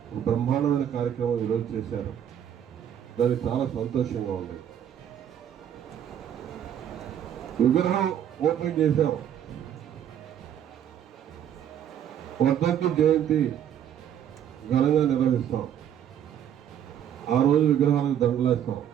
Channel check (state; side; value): quieter; left; 9.7 dB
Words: బ్రహ్మాండమైన కార్యక్రమం ఈరోజు చేశారు. దానికి చాలా సంతోషంగా ఉంది. విగ్రహం ఓపెన్ చేశాం. వర్ధంతి జయంతి ఘనంగా నిర్వహిస్తాం. ఆ రోజు విగ్రహాలకు దండలేస్తాం.